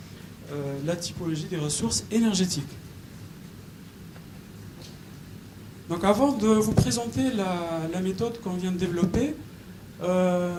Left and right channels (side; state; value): both; identical; correlation 1.00